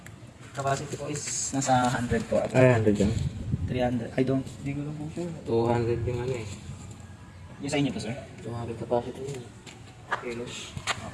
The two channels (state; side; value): identical; both; correlation 1.00